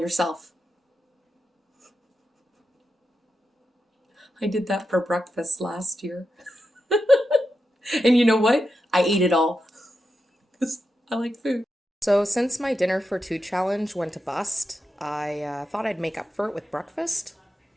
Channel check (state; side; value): normal; both; correlation 0.88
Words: I did that for breakfast last year. And you know what? I ate it all. Because I like food. So since my dinner for two challenge went to bust, I thought I'd make up for it with breakfast.